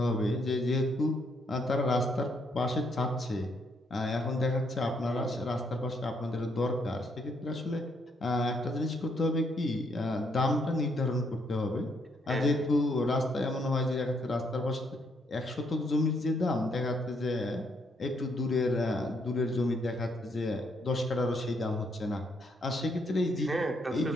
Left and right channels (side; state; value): both; normal; correlation 0.73